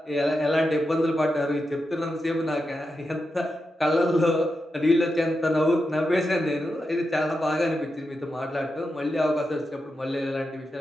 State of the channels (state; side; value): normal; both; correlation 0.88